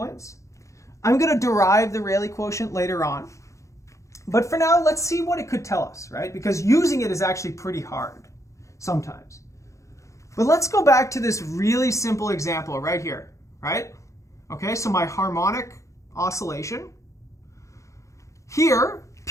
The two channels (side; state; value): right; late; 0.15 ms